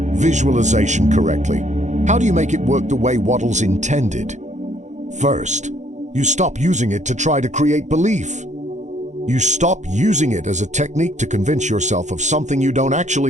visualization correctly? How do you make it work the way Wattles intended? First, you stop using it to try to create belief. You stop using it as a technique to convince yourself of something you don't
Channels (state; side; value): late; left; 0.34 ms